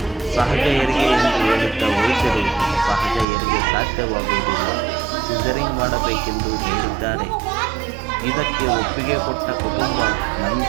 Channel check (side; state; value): left; drops out; at 3.2 s